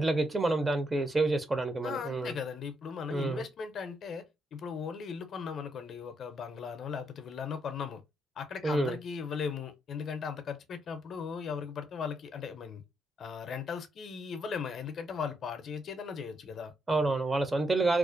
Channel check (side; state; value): both; normal; correlation 0.78